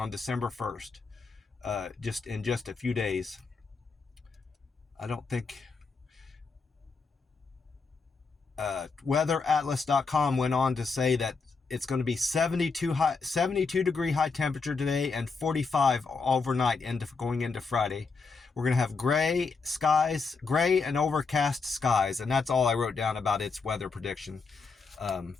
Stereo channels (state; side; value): quieter; right; 4.6 dB